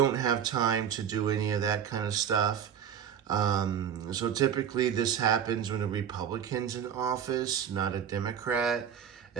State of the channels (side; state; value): left; quieter; 8.5 dB